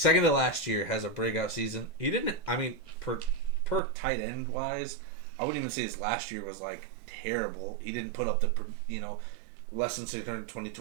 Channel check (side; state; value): left; drops out; at 3.8 s